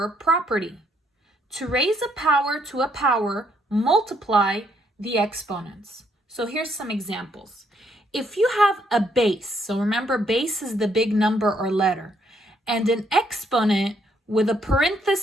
property. To raise a power to a power, multiply the exponents. So here's some examples. If you have a base, so remember base is the big number or letter, and an exponent with a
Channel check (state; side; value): normal; both; correlation 0.71